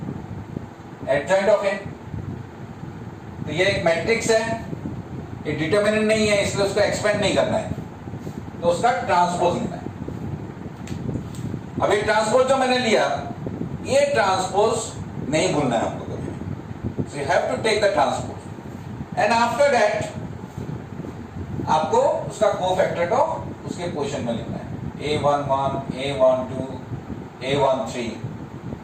एडजॉइंट ऑफ ए। तो ये एक मैट्रिक्स है, ये डिटरमिनेंट नहीं है, इसलिए उसको एक्सपेंड नहीं करना है, तो उसका ट्रांसपोज लेना है। अभी ट्रांसपोज जो मैंने लिया, ये ट्रांसपोज नहीं भूलना है आपको कभी, so you have to take the transpose and after that आपको उसका कोफैक्टर को उसके पोजीशन में लिखना है। A11, A12, A13,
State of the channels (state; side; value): identical; both; correlation 1.00